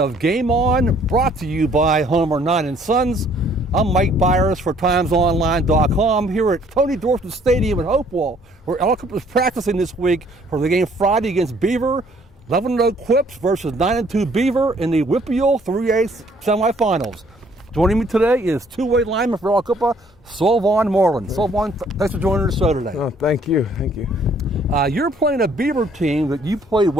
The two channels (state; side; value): normal; both; correlation 0.61